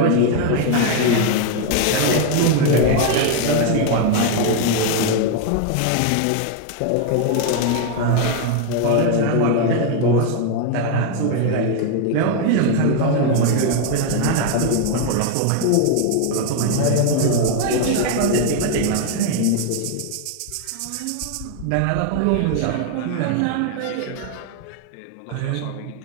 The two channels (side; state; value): both; different; correlation 0.01